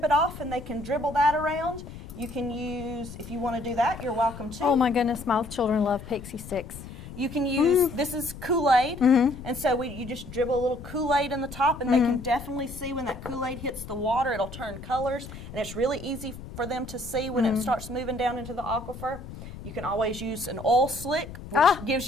it off, and they can dribble that around. You can use, if you want to do that, you're welcome to. Oh my goodness, my children love pixie sticks. You can use, this is Kool-Aid, and so you just dribble a little Kool-Aid in the top, and they can definitely see when that Kool-Aid hits the water, it'll turn colors, and it's really easy for them to see when it starts moving down into the aquifer. You can always use an oil slick, which gives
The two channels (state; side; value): noise; left; rumble, 13 dB below the sound